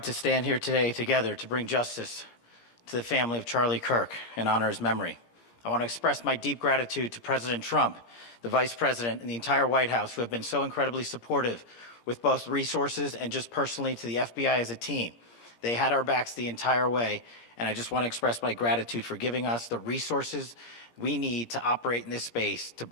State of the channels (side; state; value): right; late; 17 ms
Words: to stand here today together to bring justice to the family of Charlie Kirk and honor his memory. I want to express my deep gratitude to President Trump, the Vice President, and the entire White House who have been so incredibly supportive with both resources and just personally to the FBI as a team. They had our backs the entire way, and I just want to express my gratitude for giving us the resources we need to operate in this space to